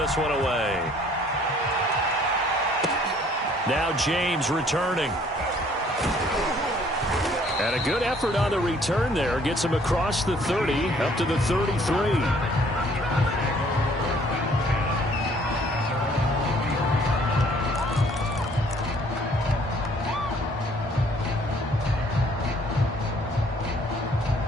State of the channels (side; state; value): both; normal; correlation 0.59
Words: one away. Now James returning. And a good effort on the return there. Gets him across the 30 up to the 33.